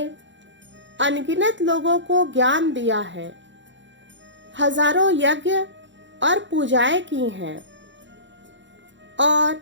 अनगिनत लोगों को ज्ञान दिया है, हजारों यज्ञ और पूजाएं की हैं और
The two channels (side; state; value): left; late; 0.54 ms